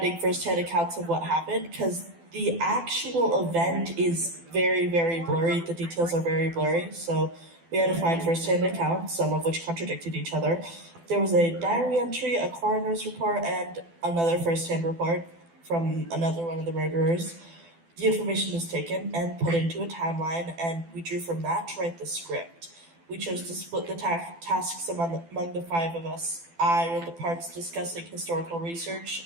first-hand accounts of what happened, because the actual event is very, very blurry. The details are very blurry, so we had to find first-hand accounts, some of which contradicted each other. There was a diary entry, a coroner's report, and another first-hand report from another one of the murderers. The information was taken and put into a timeline, and we drew from that to write the script. We chose to split the tasks among the five of us. I wrote the parts discussing historical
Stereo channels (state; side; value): late; left; 12 ms